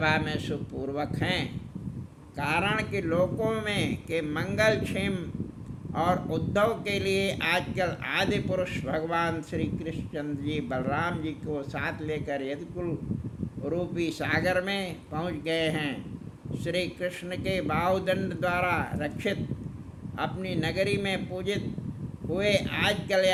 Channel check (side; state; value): both; identical; correlation 1.00